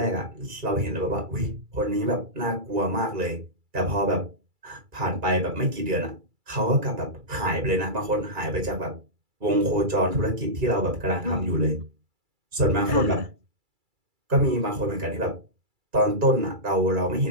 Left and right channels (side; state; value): left; late; 2.3 ms